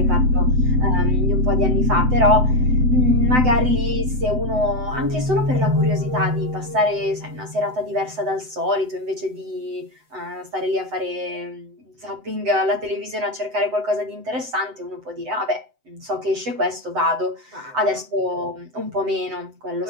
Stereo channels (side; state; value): left; late; 7.9 ms